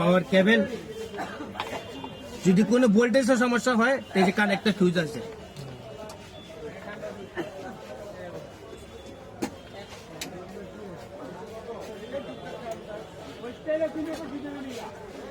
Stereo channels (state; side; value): identical; both; correlation 1.00